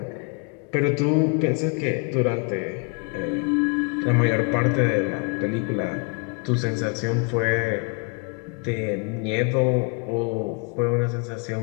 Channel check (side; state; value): right; quieter; 34.4 dB